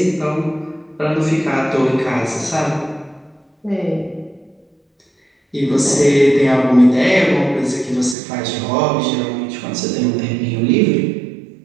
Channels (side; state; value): left; drops out; at 8.2 s